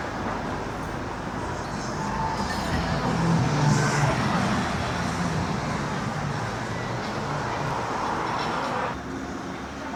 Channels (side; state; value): both; identical; correlation 1.00